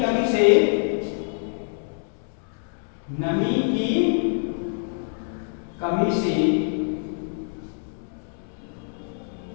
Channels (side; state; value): right; silent; 61 dB below the other